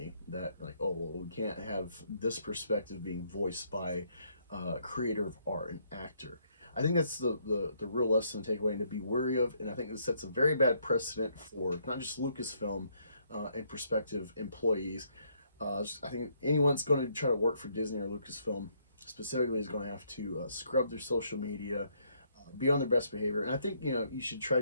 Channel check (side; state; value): both; inverted; correlation -0.71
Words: that, like, oh, well, we can't have this perspective being voiced by a creator of art, an actor. I think that's the real lesson to take away and to be wary of. And I think this sets a very bad precedent for not just Lucasfilm and prospective employees. I think anyone's going to try to work for Disney or Lucasfilm specifically is going to have to scrub their social media, be on their best behavior. And I think, you should try